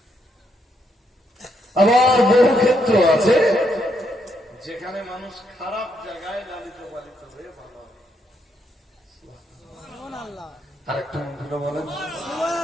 আবার বহু ক্ষেত্র আছে যেখানে মানুষ খারাপ জায়গায় লালিত পালিত হয়ে ভালো হয়। আরেকটা মন্ত্র বলেন,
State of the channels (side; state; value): both; normal; correlation 0.77